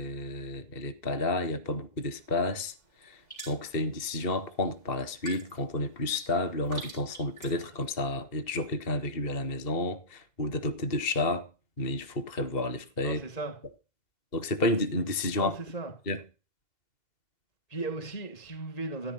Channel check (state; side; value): late; right; 2.0 ms